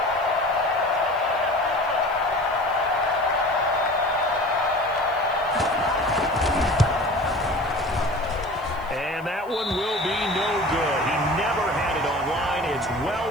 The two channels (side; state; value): right; noise; hiss, 27 dB below the sound